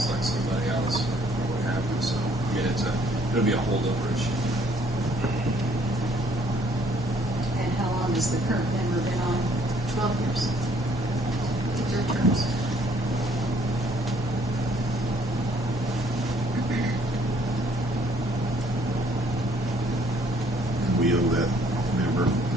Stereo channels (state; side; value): normal; both; correlation 0.63